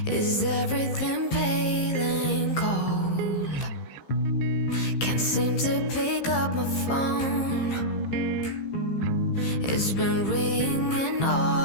is everything pale and cold? Can't seem to pick up my phone. It's been ringing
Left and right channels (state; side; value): late; right; 15 ms